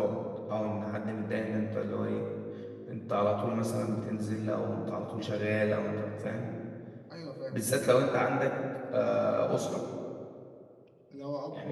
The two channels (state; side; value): identical; both; correlation 1.00